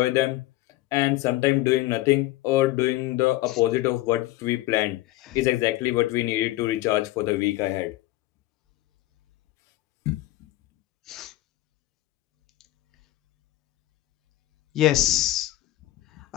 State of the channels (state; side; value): quieter; right; 17.0 dB